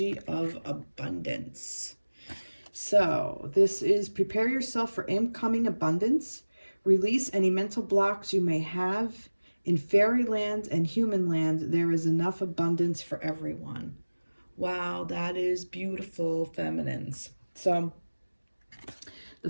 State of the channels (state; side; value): inverted; both; correlation -1.00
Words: of abundance. So this is prepare yourself for incoming abundance. Release any mental blocks you may have. In fairyland and human land, there is enough abundance for everyone. Wow, that is beautiful, feminines. So The